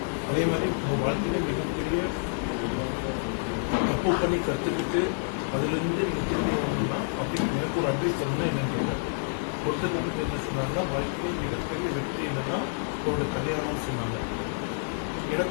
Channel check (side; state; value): right; silent; digital silence